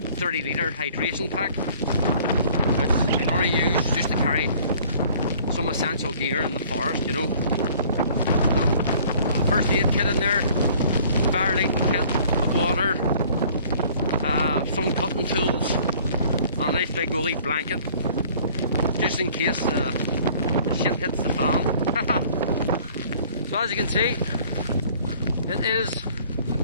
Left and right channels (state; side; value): inverted; both; correlation -0.53